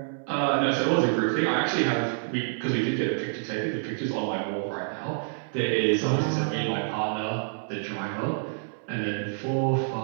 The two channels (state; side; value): silent; left; 60 dB below the other